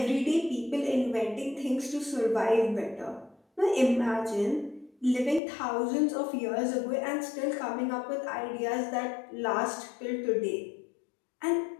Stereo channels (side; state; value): right; drops out; at 5.4 s